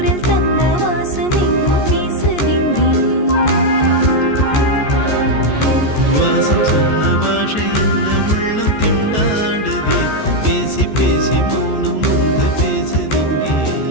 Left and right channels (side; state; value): right; late; 14 ms